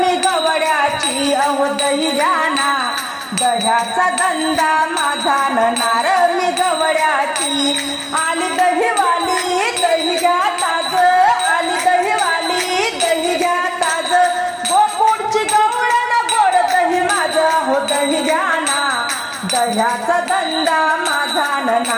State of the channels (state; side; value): identical; both; correlation 1.00